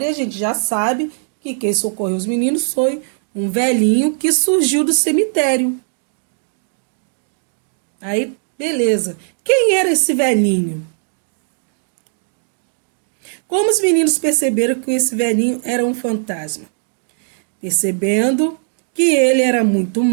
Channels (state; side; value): silent; left; digital silence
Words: a gente já sabe que quem socorreu os meninos foi um velhinho que surgiu do cemitério. Aí, beleza. Quem era esse velhinho? Como os meninos perceberam que esse velhinho era um fantasma? Percebendo que ele era muito